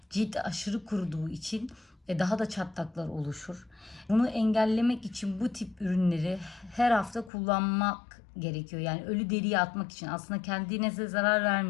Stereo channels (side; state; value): right; drops out; at 7.3 s